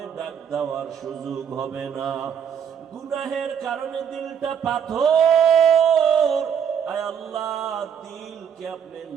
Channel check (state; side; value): quieter; left; 8.0 dB